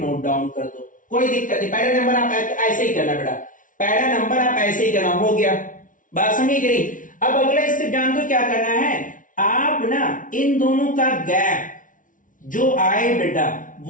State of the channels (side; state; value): right; late; 0.38 ms